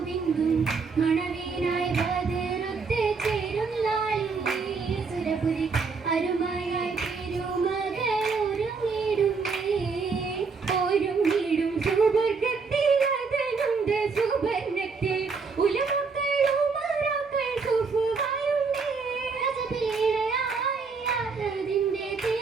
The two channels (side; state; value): left; quieter; 4.8 dB